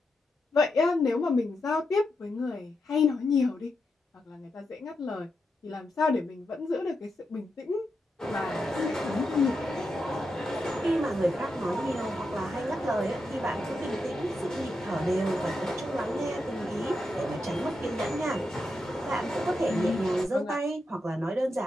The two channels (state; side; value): normal; both; correlation 0.86